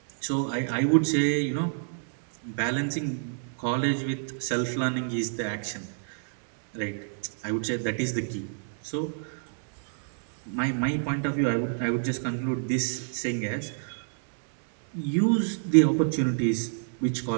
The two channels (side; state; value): left; silent; digital silence